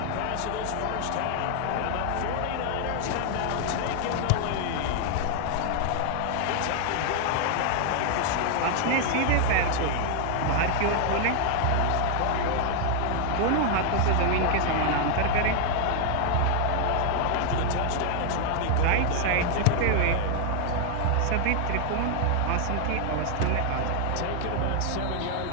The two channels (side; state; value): both; different; correlation 0.00